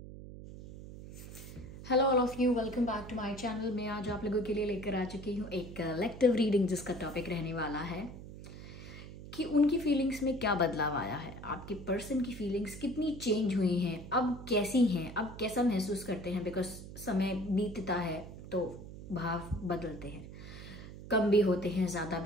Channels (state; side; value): noise; right; hum, 13 dB below the sound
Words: all of you, welcome back to my channel. मैं आज आप लोगों के लिए लेकर आ चुकी हूँ एक कलेक्टिव रीडिंग, जिसका टॉपिक रहने वाला है कि उनकी फीलिंग्स में क्या बदलाव आया है, आपके पर्सन की फीलिंग्स कितनी चेंज हुई हैं, अब कैसी हैं, अब कैसा महसूस करते हैं। बिकॉज समय बीतता है तो भाव बदलते हैं, कम भी होते हैं, ज़्यादा